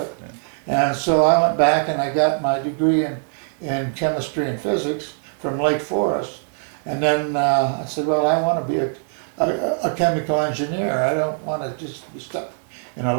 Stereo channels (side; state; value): left; silent; digital silence